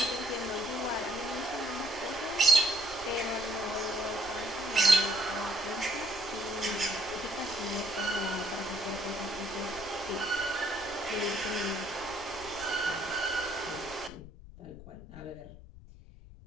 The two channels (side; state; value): left; noise; rumble, 16 dB below the sound